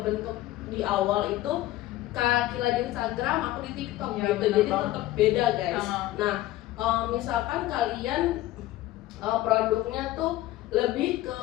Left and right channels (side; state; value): right; quieter; 15.6 dB